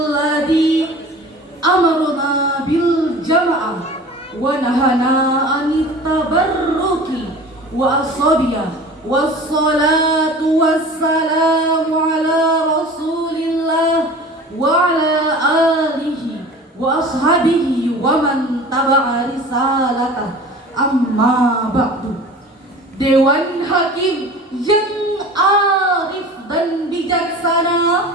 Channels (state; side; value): normal; both; correlation 0.40